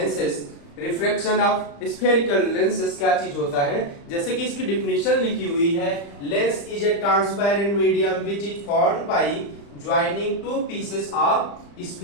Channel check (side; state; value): right; late; 35 ms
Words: refraction of spherical lenses क्या चीज होता है। जैसे कि इसकी डिफिनेशन लिखी हुई है, lens is a transparent medium which is formed by joining two pieces of